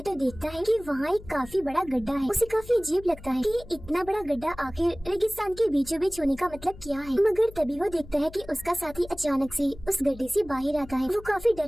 तो देखता है कि वहाँ एक काफी बड़ा गड्ढा है। उसे काफी अजीब लगता है कि इतना बड़ा गड्ढा आखिर रेगिस्तान के बीचों बीच होने का मतलब क्या है, मगर तभी वो देखता है कि उसका साथी अचानक से उस गड्ढे से बाहर आता है। वो काफी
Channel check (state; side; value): noise; left; hum, 18 dB below the sound